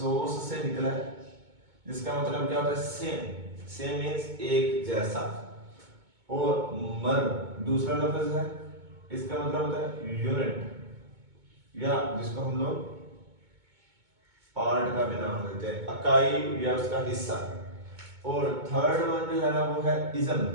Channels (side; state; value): left; late; 2.2 ms